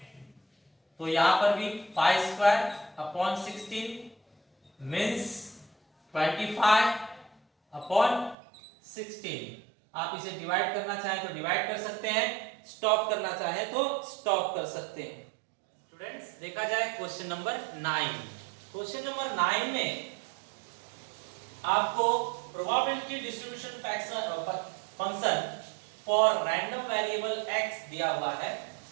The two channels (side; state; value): left; drops out; at 8.3 s